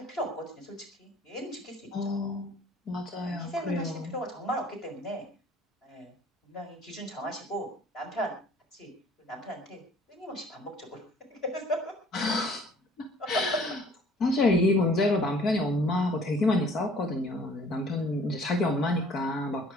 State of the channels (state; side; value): normal; both; correlation 0.54